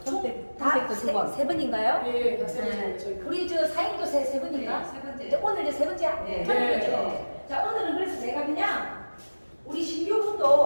세 번인가요? 예, 다 세 번째. 네. 저희 우리 저 사인도 세 번인가? 네, 세 번째. 이제 오늘 이제 세 번째 네. 편이죠. 자, 오늘은 그래서 제가 그냥 우리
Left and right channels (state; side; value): inverted; both; correlation -1.00